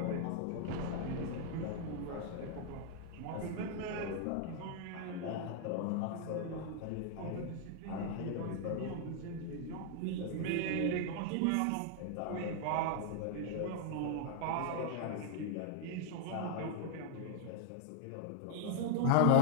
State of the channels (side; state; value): both; different; correlation 0.00